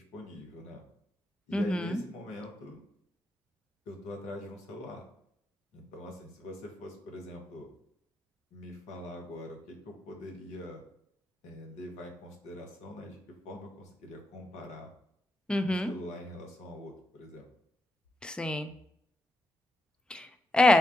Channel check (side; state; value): both; normal; correlation 0.84